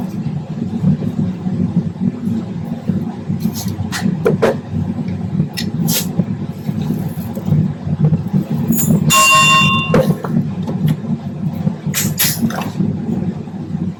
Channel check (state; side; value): identical; both; correlation 1.00